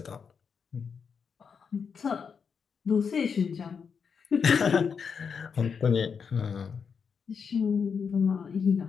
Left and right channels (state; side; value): quieter; right; 6.2 dB